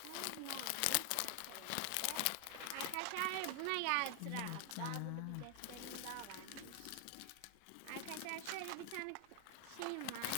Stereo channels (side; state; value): both; different; correlation 0.00